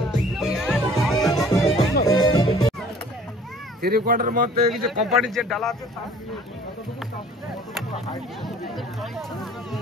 থ্রি কোয়ার্টার মধ্যে কিছু কোম্পানির যে ডালা আছে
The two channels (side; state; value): both; normal; correlation 0.52